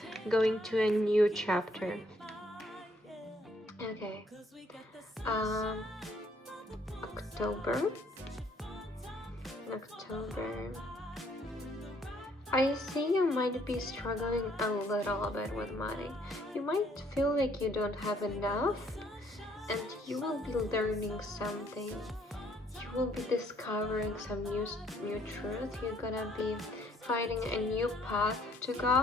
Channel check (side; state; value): both; normal; correlation 0.65